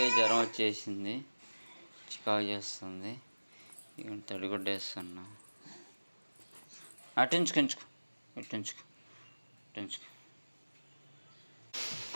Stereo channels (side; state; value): both; inverted; correlation -1.00